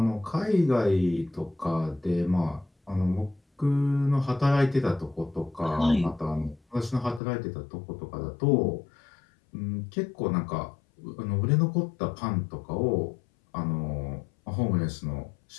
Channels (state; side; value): drops out; right; at 7.2 s